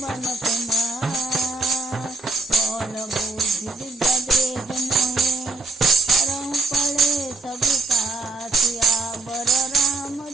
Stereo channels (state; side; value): quieter; left; 3.7 dB